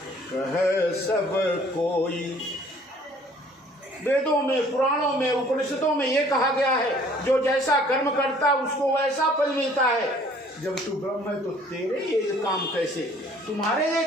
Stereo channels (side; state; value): both; normal; correlation 0.56